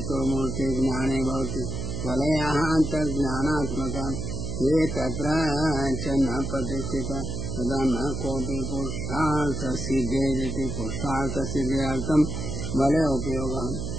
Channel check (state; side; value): noise; right; hum, 4 dB below the sound